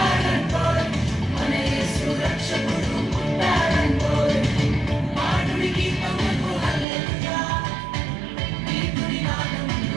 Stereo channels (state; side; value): drops out; left; at 6.9 s